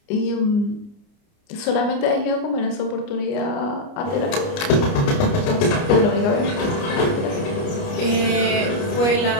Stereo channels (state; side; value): late; right; 29 ms